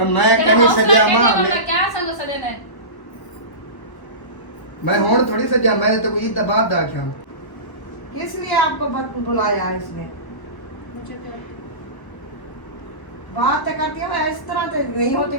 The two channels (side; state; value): right; late; 1.0 ms